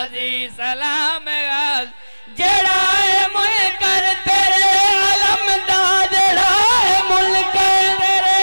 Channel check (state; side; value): inverted; both; correlation -1.00